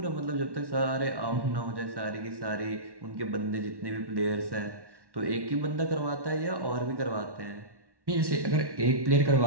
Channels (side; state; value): left; late; 1.1 ms